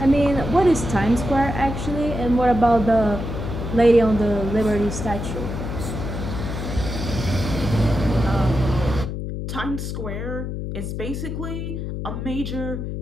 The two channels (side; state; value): left; noise; hum, 5 dB below the sound